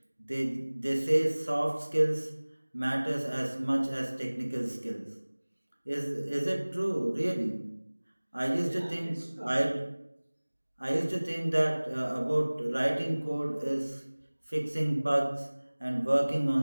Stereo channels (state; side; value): inverted; both; correlation -1.00